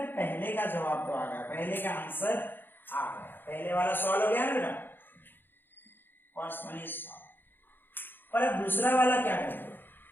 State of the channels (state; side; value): late; right; 0.097 ms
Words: पहले का जवाब तो आ गया, पहले का आंसर आ गया, पहले वाला सॉल्व हो गया ना बेटा, फर्स्ट वन इज सॉल्व। पर अब दूसरा वाला क्या करेंगे,